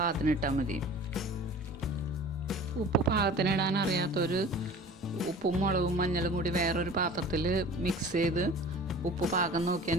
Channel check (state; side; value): normal; both; correlation 0.42